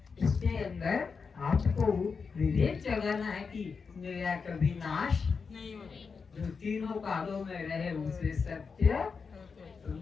इसके अंदर आपको विवेक जगाना है कि मेरा कभी नाश नहीं होगा। जो तीनों कालों में रहे उसे सत्य, तो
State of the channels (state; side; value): quieter; right; 5.3 dB